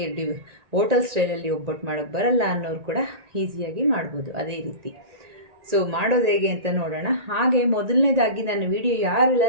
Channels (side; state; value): left; late; 1.8 ms